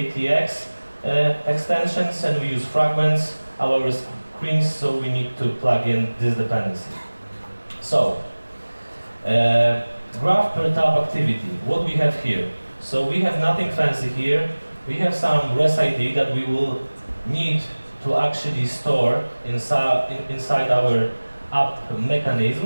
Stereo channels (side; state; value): both; inverted; correlation -1.00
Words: extensions, and we use fragments. Our screens, so we need to plug in this dependency. So, graph per tab activity, what we have here. So we have nothing fancy here. We have some res ID that we will need to actually store inside our app